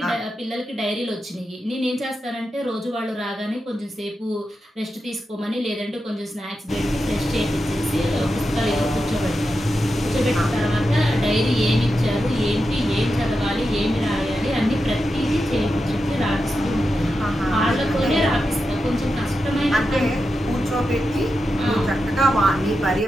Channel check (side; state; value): both; normal; correlation 0.89